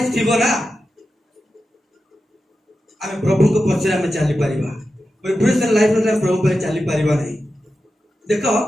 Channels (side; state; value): both; normal; correlation 0.91